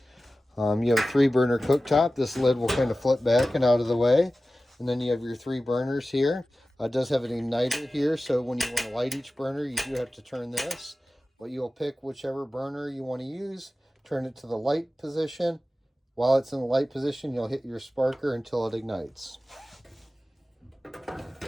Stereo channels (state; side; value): normal; both; correlation 0.95